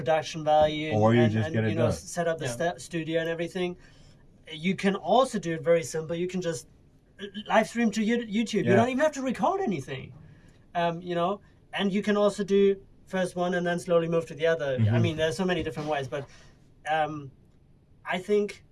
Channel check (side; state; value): both; identical; correlation 1.00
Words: value, or you and just get it you know, done. set up the studio and everything. You can also do it very simple. You can just live stream to YouTube. You don't even have to record anything. You know, and you can also do first one and then slowly move to the other. I mean, there's so many different ways, but I think